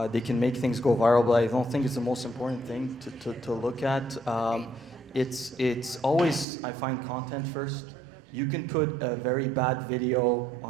make things go viral, but I don't think it's the most important thing to look at. It's always, I find, content first. You can put a very bad video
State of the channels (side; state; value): left; drops out; at 6.5 s